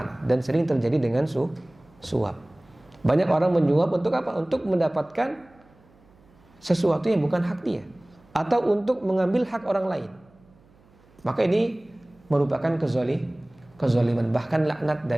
Dan sering terjadi dengan suap. Banyak orang menyuap untuk apa? Untuk mendapatkan sesuatu yang bukan hak dia, atau untuk mengambil hak orang lain. Maka ini merupakan kezaliman, bahkan laknat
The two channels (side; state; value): right; noise; hum, 30 dB below the sound